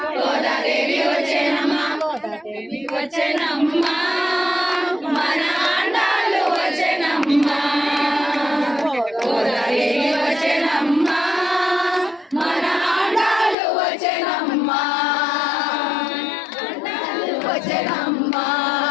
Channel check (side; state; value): right; drops out; at 13.6 s